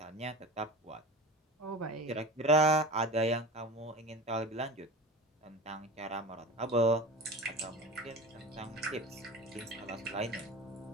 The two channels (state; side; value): normal; both; correlation 0.32